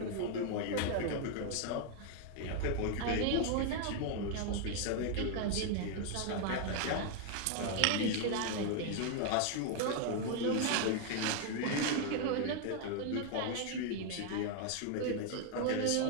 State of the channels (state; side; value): different; both; correlation 0.00